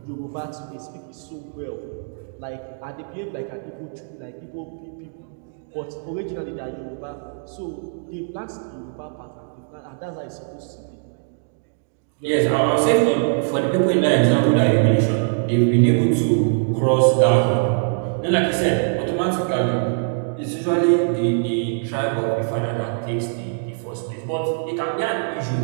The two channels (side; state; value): left; silent; digital silence